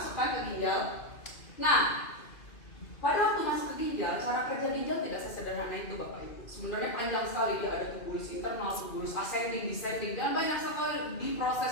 ke ginjal. Nah, pada waktu masuk ke ginjal, cara kerja ginjal tidak sesederhana itu Bapak Ibu. Sebenarnya panjang sekali, dia ada tubulus internal, tubulus ascending, descending, dan banyak sekali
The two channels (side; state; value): right; late; 2.4 ms